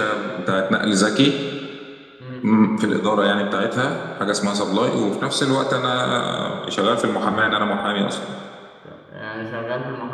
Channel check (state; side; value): identical; both; correlation 1.00